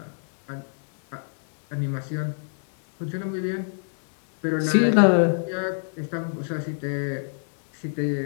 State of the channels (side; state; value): right; silent; 62 dB below the other